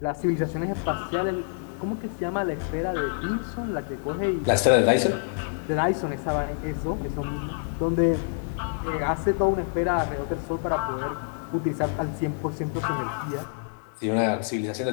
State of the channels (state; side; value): silent; right; digital silence